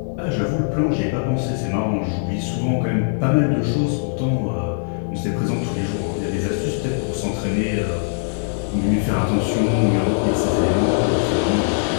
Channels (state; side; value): silent; right; 65 dB below the other